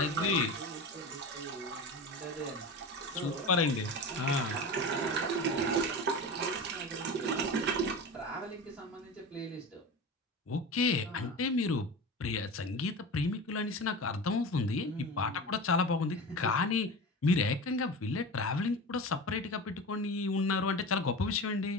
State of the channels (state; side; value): normal; both; correlation 0.29